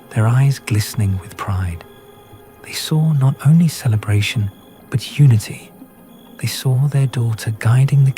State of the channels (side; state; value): both; identical; correlation 1.00